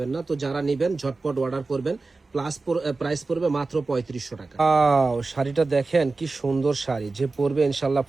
না। তো যারা নিবেন ঝটপট অর্ডার করবেন। প্রাইস পড়বে মাত্র 3500 টাকা। শাড়িটা দেখেন কি সুন্দর শাড়ি, যে পরবে ইনশাল্লাহ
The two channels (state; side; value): quieter; left; 3.7 dB